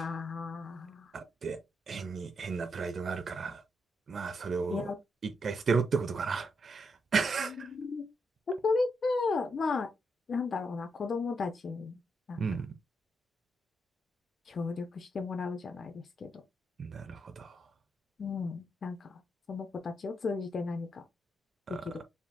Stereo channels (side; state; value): both; normal; correlation 0.80